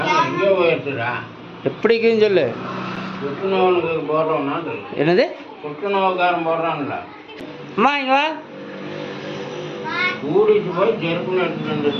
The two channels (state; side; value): identical; both; correlation 1.00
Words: எப்படி இருக்குதுன்னு சொல்லு. என்னது புற்றுநோய்க்காரன் போடுறான்ல. அம்மா இங்க வா. கூடிட்டு போய் செருப்புன்னு எடுத்துட்டு